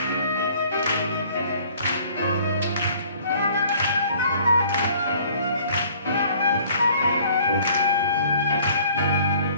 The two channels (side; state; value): both; inverted; correlation -0.55